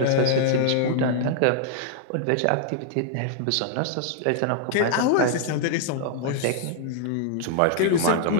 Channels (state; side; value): different; both; correlation -0.01